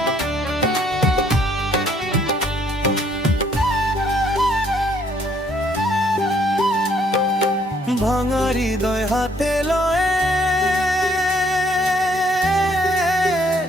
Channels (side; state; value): both; normal; correlation 0.65